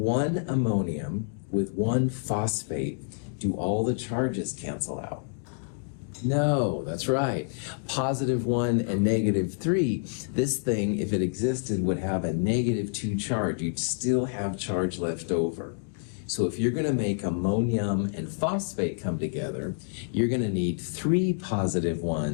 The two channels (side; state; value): right; silent; digital silence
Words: ammonium with 1 phosphate, do all the charges cancel out? No, that's right. Positive 1 and negative 3. This thing, if it existed, would have a negative 2 charge. You'd still have charge left over. So if you're going to make ammonium and phosphate come together, you're going to need 3 positive